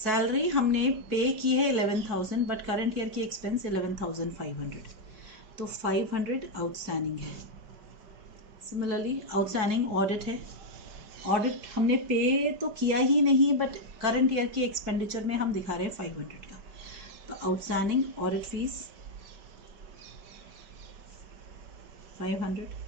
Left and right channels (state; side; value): late; left; 5.1 ms